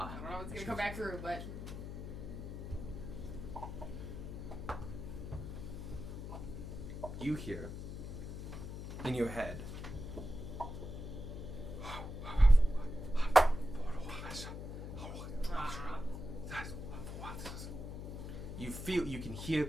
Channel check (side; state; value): left; noise; hum, 7 dB below the sound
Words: don't know if it's gonna come back through, but You hear in your head. You can hear